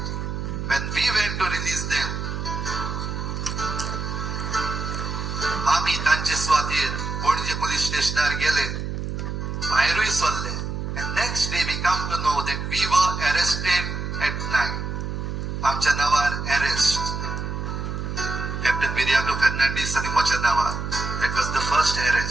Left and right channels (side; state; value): right; noise; hum, 4 dB below the sound